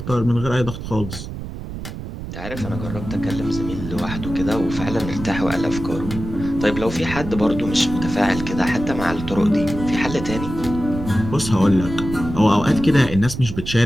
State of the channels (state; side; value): noise; right; rumble, 9 dB below the sound